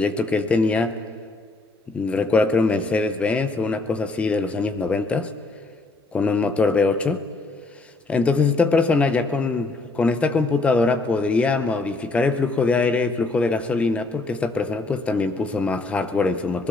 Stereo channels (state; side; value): quieter; right; 3.4 dB